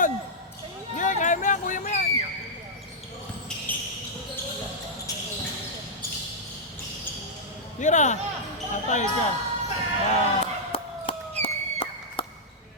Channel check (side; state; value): both; normal; correlation -0.09